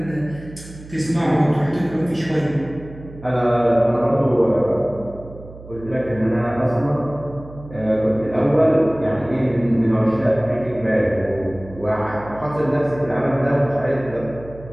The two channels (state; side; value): noise; right; hum, 17 dB below the sound